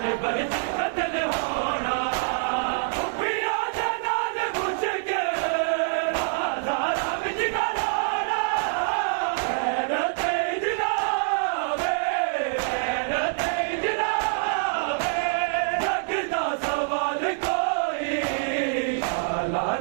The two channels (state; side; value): silent; left; digital silence